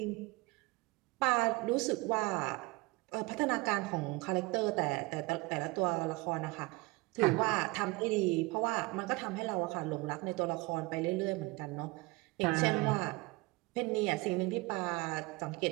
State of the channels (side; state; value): left; quieter; 24.3 dB